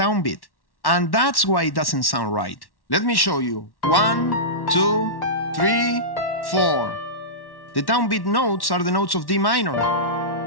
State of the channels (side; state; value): right; late; 1.1 ms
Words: And that's why it doesn't sound right. Let me show you. 1, 2, 3, 4. The downbeat notes are the notes of D minor.